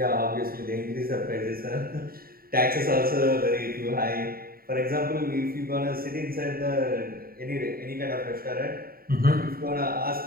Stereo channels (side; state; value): left; late; 0.43 ms